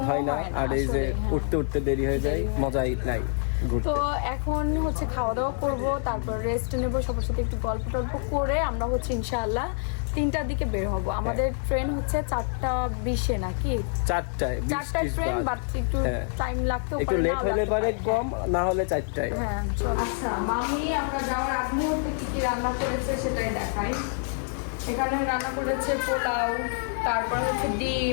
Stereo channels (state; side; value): silent; right; 56 dB below the other